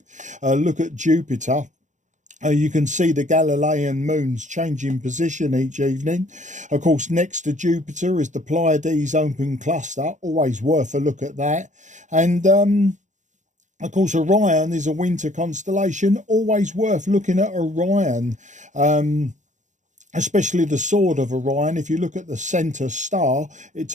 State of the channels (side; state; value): left; late; 0.35 ms